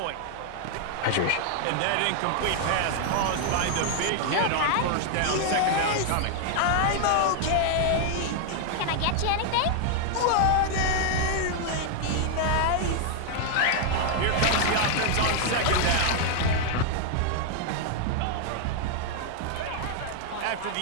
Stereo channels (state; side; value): different; both; correlation 0.00